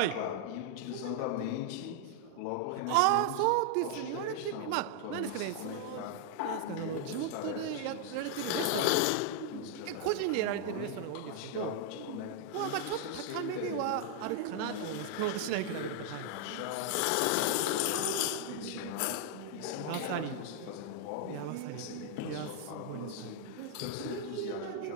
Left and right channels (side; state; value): both; different; correlation 0.00